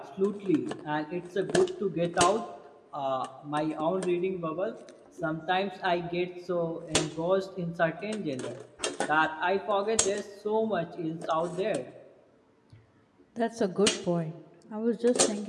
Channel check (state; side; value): identical; both; correlation 1.00